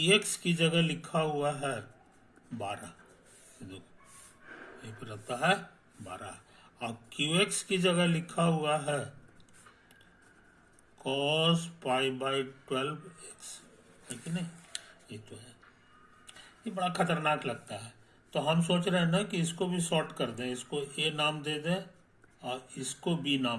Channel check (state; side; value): identical; both; correlation 1.00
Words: की जगह लिखा हुआ है 12, देखो ये पे रहता है 12, और qx की जगह लिखा हुआ है cos पाई बाई 12x, है कि नहीं। ये तो है, ये बड़ा खतरनाक लगता है। तो हम सोच रहे हैं ना कि इसको भी शॉर्ट कर दें, इसको a नाम दे दें और इसको b